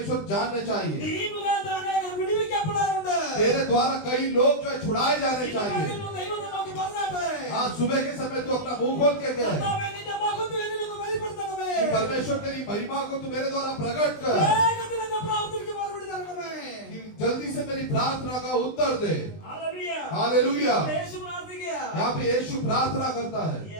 जानने चाहिए, ഈ മുഖാന്തരം അനേകർ വിടുവിക്കപ്പെടാറുണ്ട്. तेरे द्वारा कई लोग जो है छुड़ाए जाने ഈ चाहिए। പകലിൽ ദൈവത്തെ നോക്കി പറഞ്ഞാട്ടെ, आज सुबह के समय तू अपना मुंह खोल के कहे കർത്താവേ, നിന്റെ മഹത്വം എന്നിലൊന്ന് വെളിപ്പെടുത്തണമേ. कि परमेश्वर तेरी महिमा को तू मेरे द्वारा प्रकट कर, വേഗത്തിൽ എന്റെ പ്രാർത്ഥനയ്ക്ക് മറുപടി തരണമേ. कि जल्दी से मेरी प्रार्थना का उत्तर दे। ഹല്ലേലൂയ. हालेलुया। യേശു പ്രാർത്ഥിക്കുക. यहाँ पे यीशु प्रार्थना करता है,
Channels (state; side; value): late; right; 20 ms